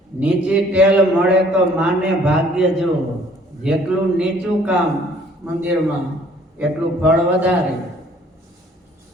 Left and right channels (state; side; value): normal; both; correlation 0.58